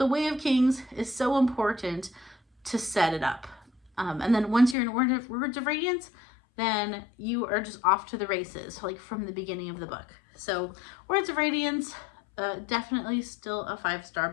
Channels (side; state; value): right; drops out; at 4.8 s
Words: Way of Kings is so important to set it up. And then once you're in Words of Radiance, then you are just off to the races, like from the beginning of the book. So Words of Radiance, definitely still a 5-star